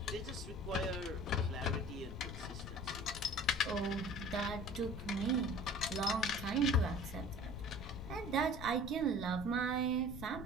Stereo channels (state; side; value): noise; left; rumble, 10 dB below the sound